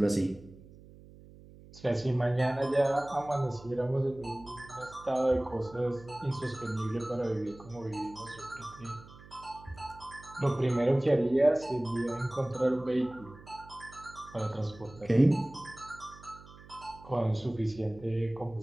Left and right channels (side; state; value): right; noise; hum, 20 dB below the sound